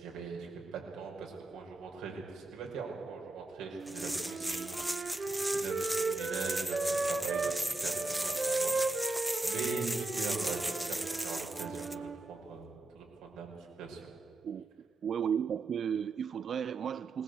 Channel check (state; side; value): quieter; left; 3.3 dB